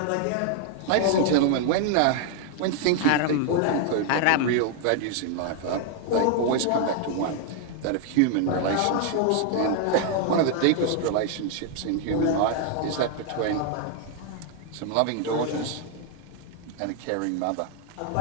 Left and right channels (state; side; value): different; both; correlation 0.00